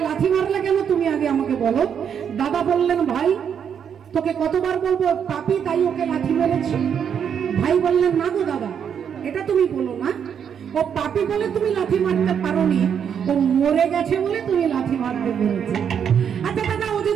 লাথি মারলে কেন, তুমি আগে আমাকে বলো। দাদা বললেন, ভাই তোকে কতবার বলবো পাপী তাই ওকে লাথি মেরেছি। ভাই বললেন, না গো দাদা এটা তুমি বলো না, ও পাপী বলে তুমি লাথি মারতে পারোনি, ও মরে গেছে বলে তুমি লাথি মারতে পেরেছো। আচ্ছা দাদা ও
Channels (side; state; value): left; quieter; 7.9 dB